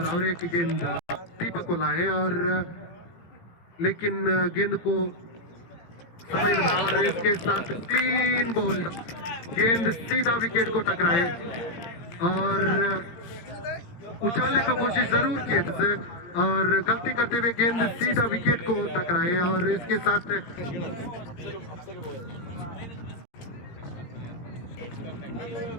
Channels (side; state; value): right; late; 18 ms